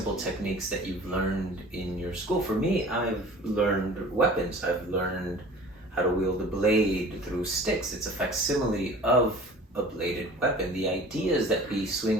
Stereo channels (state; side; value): normal; both; correlation 0.44